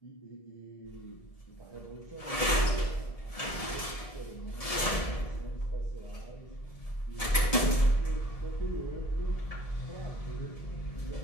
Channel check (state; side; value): late; right; 1.8 ms